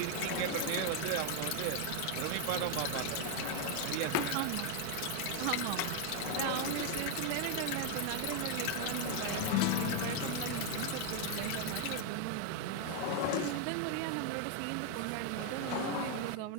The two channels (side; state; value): both; different; correlation 0.01